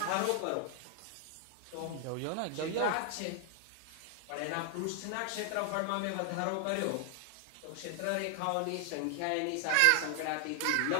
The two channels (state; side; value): different; both; correlation 0.00